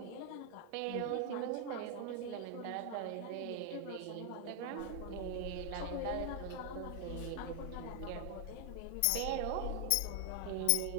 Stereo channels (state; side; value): different; both; correlation 0.00